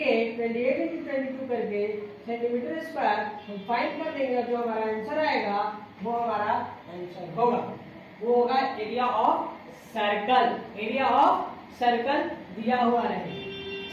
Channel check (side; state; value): both; identical; correlation 1.00